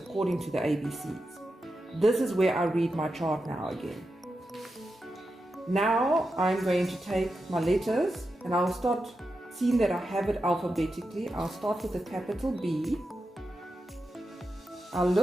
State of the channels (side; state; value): both; normal; correlation 0.89